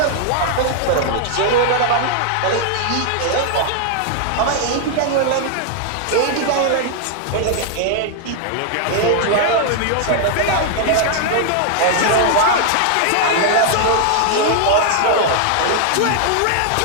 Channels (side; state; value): both; different; correlation 0.00